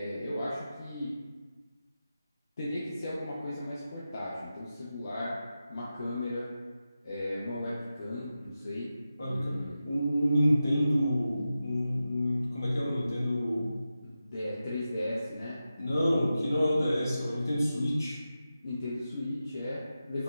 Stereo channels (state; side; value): inverted; both; correlation -0.92